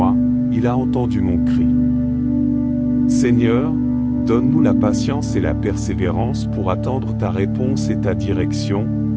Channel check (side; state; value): both; identical; correlation 1.00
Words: il a entendu mon cri. Seigneur, donne-nous la patience et la persévérance pour attendre ta réponse et ta direction,